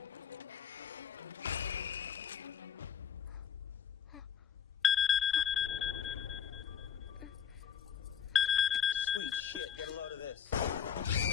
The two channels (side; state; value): right; quieter; 8.0 dB